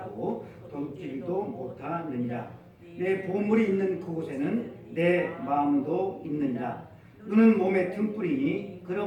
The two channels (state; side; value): identical; both; correlation 1.00